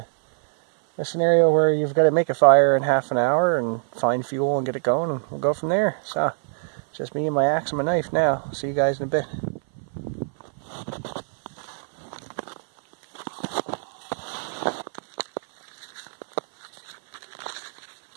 scenario where you've got to make a fire in half an hour and find fuel and get it going, and we'll go from there. So Just me and my axe and my knife now. See you guys in a bit.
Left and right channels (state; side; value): silent; left; 58 dB below the other